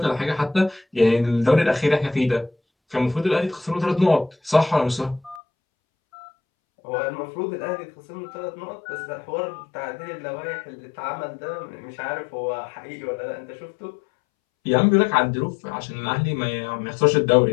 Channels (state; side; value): drops out; right; at 5.4 s